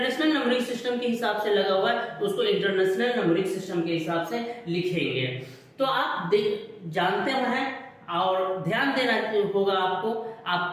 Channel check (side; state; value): both; identical; correlation 1.00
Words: नंबरिंग सिस्टम के हिसाब से लगा हुआ है तो उसको इंटरनेशनल नंबरिंग सिस्टम के हिसाब से लिखेंगे। तो आप जानते हैं और ध्यान देना होगा,